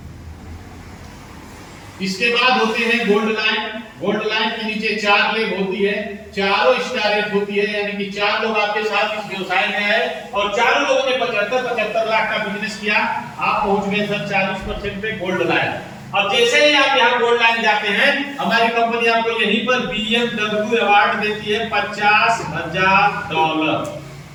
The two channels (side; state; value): both; identical; correlation 1.00